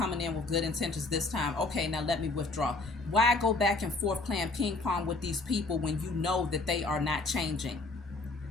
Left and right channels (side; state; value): right; quieter; 3.3 dB